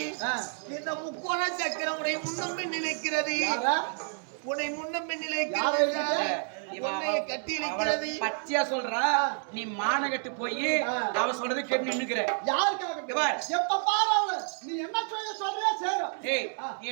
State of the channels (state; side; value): silent; left; 58 dB below the other